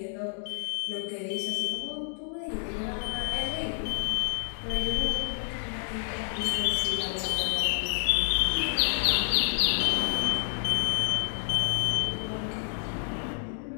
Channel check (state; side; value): silent; right; 59 dB below the other